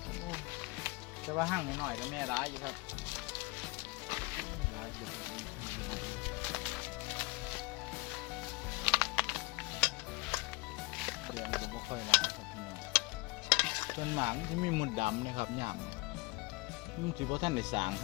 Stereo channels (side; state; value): right; quieter; 24.1 dB